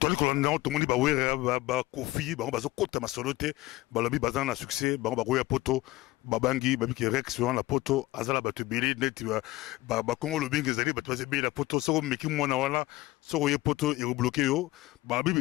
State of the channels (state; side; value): quieter; right; 18.8 dB